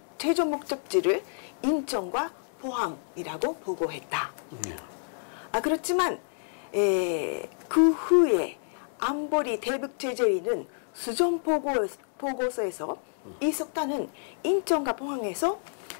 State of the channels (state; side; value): silent; right; digital silence